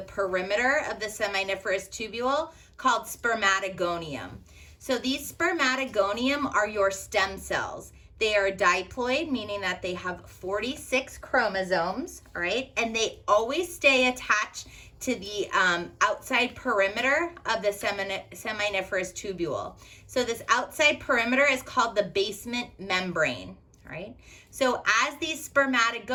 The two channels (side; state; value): both; identical; correlation 1.00